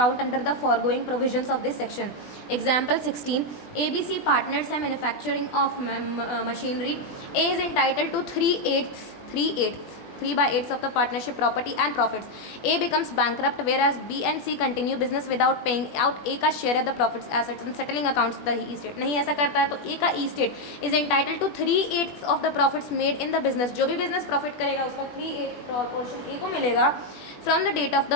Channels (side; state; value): right; late; 20 ms